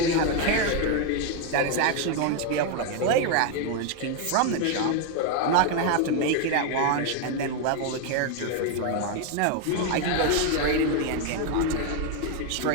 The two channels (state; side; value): different; both; correlation 0.01